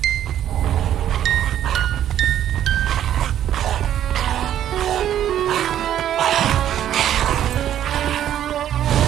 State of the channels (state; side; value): quieter; left; 11.0 dB